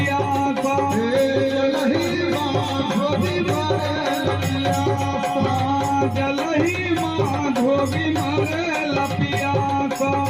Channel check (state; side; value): noise; left; hum, 28 dB below the sound